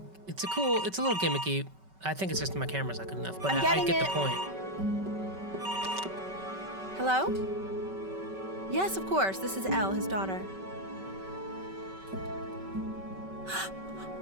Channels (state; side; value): late; left; 5.3 ms